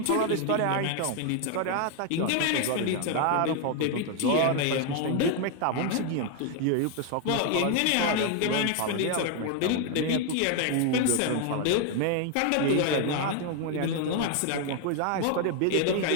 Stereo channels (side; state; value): both; different; correlation 0.01